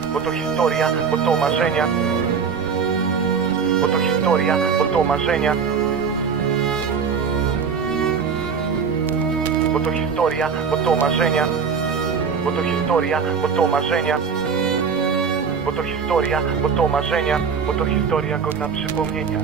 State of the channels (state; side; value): quieter; left; 6.1 dB